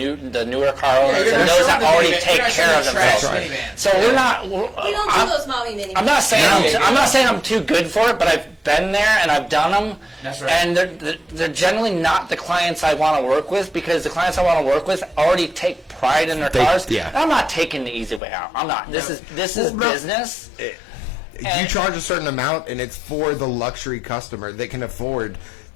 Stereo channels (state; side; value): drops out; right; at 18.2 s